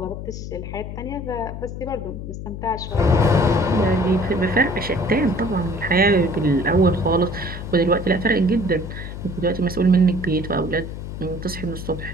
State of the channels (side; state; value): left; noise; hum, 8 dB below the sound